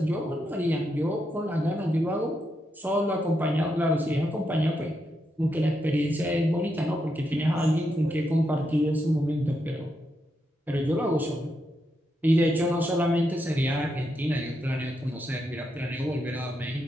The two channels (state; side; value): normal; both; correlation 0.82